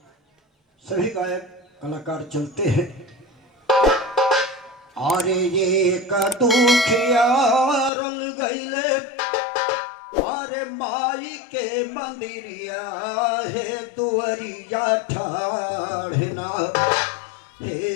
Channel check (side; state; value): right; drops out; at 7.9 s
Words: सभी गायक कलाकार चलते हैं। अरे ये का दुखिया रंग गईले, अरे माई के मंदिरिया है दुवरिया ठाढ़ना,